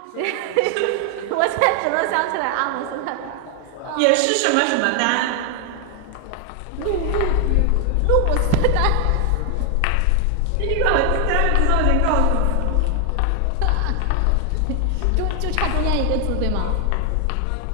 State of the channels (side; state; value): both; different; correlation 0.00